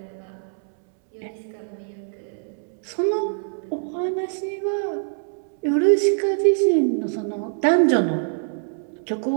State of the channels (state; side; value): silent; left; 63 dB below the other